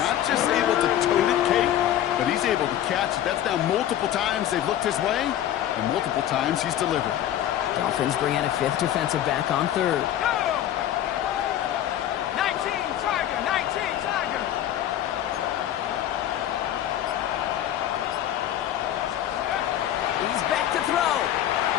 just able to tote it, Kate, but he's able to catch it. That's now multiple times they've looked his way, and multiple times he's delivered. Dolphins bring out a 5th defensive back on 3rd. He's back to throw.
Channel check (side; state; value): right; quieter; 11.6 dB